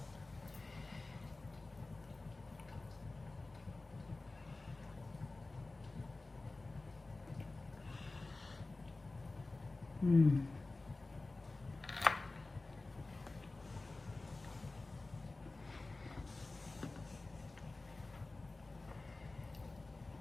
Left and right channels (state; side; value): quieter; right; 3.2 dB